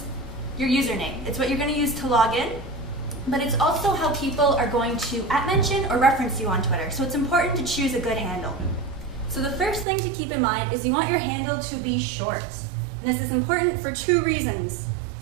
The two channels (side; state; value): left; drops out; at 9.9 s